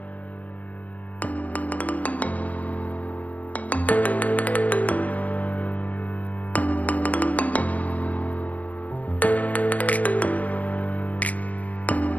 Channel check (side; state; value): right; late; 0.073 ms